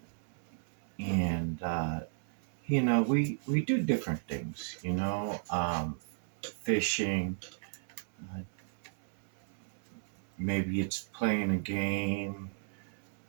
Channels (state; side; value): silent; left; 55 dB below the other